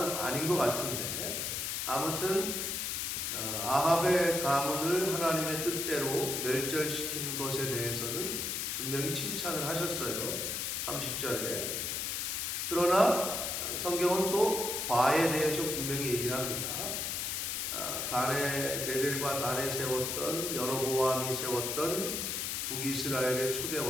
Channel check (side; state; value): left; noise; hiss, 1 dB below the sound